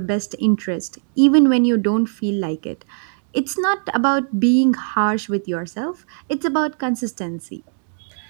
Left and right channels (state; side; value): silent; left; digital silence